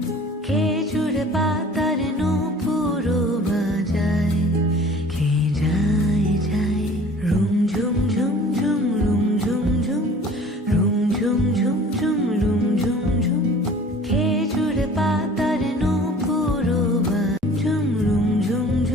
খেজুর পাতার নূপুরও বাজায় কে যায় যায় রুম ঝুম ঝুম ঝুম রুম ঝুম ঝুম রুম ঝুম ঝুম ঝুম রুম ঝুম ঝুম খেজুর পাতার নূপুরও ঝুম রুম ঝুম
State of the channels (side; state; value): both; normal; correlation 0.47